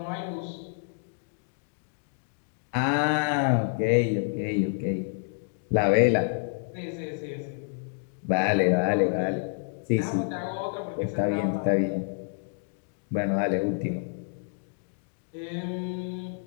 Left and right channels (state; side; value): silent; right; digital silence